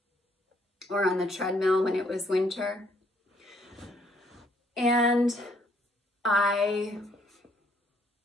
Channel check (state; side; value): normal; both; correlation 0.67